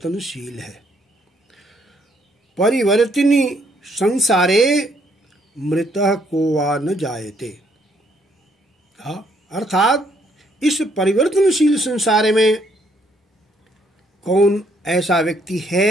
है। परिवर्तिनी संसारे मृतः को वा न जायते। अर्थात इस परिवर्तनशील संसार में कौन ऐसा व्यक्ति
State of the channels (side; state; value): both; normal; correlation 0.69